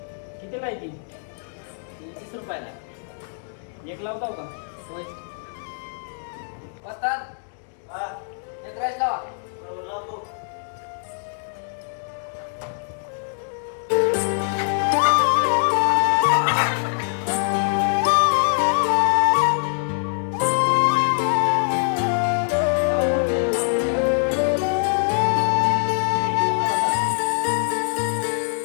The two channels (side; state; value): right; silent; digital silence